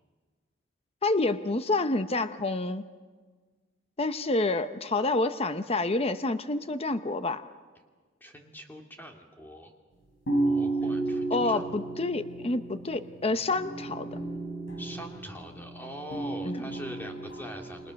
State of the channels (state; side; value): normal; both; correlation 0.44